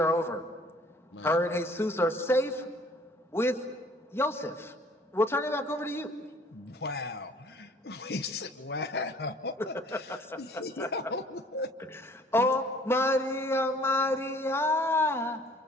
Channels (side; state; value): both; normal; correlation 0.54